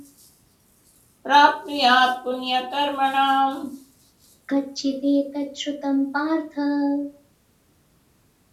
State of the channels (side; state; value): both; identical; correlation 1.00